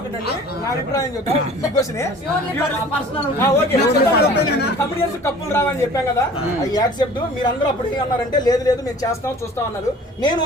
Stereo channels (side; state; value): both; normal; correlation 0.47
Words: కప్పులు రావని చెప్పాం కదా, అవి యాక్సెప్ట్. మీరందరూ అప్పుడు అన్నారంటే లేదు లేదు మేము చేస్తాం చూస్తాం అన్నారు. నేను